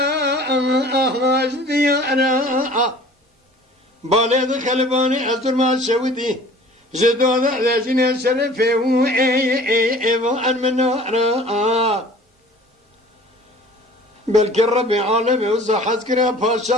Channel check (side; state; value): both; normal; correlation 0.47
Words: بالد خلباني أزر ما شودي جدود لجنة شرفه وأن منارا بلك الرب عالمي وزحز كرا